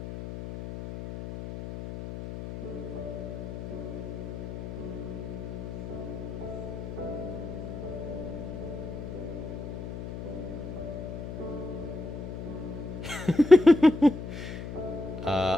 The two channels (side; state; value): left; noise; hum, 8 dB below the sound